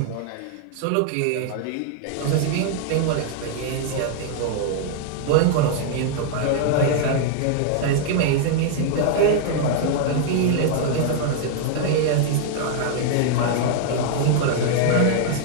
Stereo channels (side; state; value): both; different; correlation -0.01